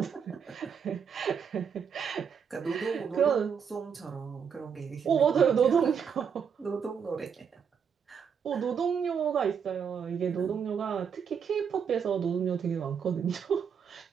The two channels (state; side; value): quieter; left; 7.0 dB